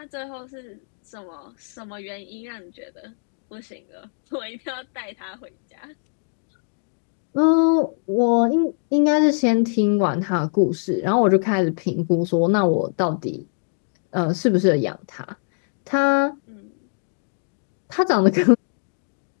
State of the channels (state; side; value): silent; right; digital silence